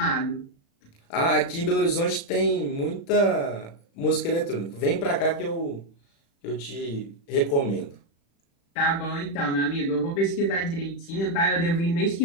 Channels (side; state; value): right; late; 36 ms